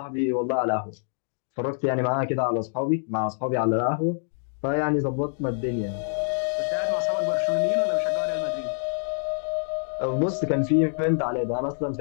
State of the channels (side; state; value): right; silent; digital silence